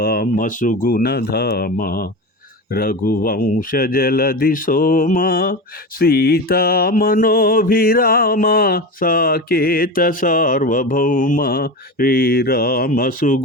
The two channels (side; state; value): both; normal; correlation 0.24